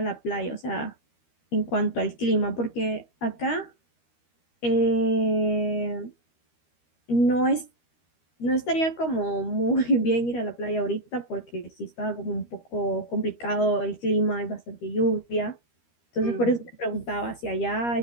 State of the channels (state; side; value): late; right; 13 ms